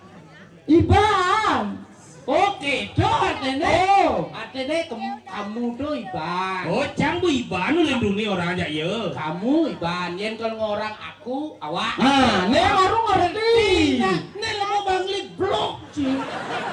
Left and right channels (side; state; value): both; identical; correlation 1.00